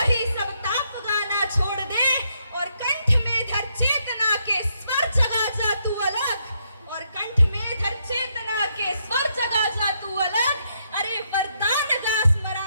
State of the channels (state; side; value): inverted; both; correlation -0.77